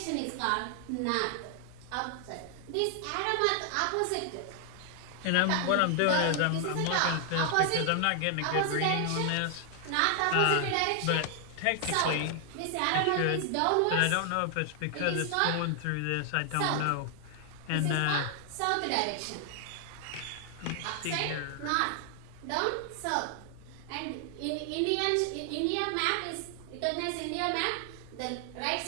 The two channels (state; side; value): different; both; correlation 0.00